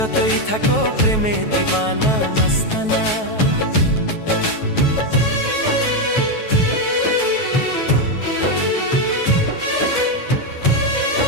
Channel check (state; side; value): late; right; 9.2 ms